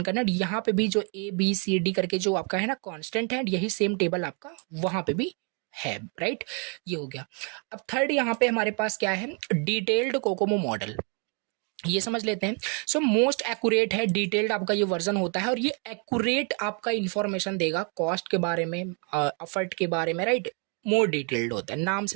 करना है। यहाँ पे भी जो ABCD करके जो आपका है ना कांस्टेंट है, यही सेम टेबल आपका वहाँ पे भी है, राइट। ये हो गया। अब थर्ड यहाँ पे हमारे पास क्या है, डिटेल्ड कोकोमो मॉडल। ये समझ लेते हैं। सो मोस्ट एक्यूरेट है, डिटेल्ड आपका ये वर्जन होता है, और ये एक्यूरेट आपका इंफॉर्मेशन देगा कॉस्ट के बारे में, एफर्ट के बारे में, राइट। मोर डिटेल्ड होता है, नाम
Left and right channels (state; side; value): quieter; left; 37.5 dB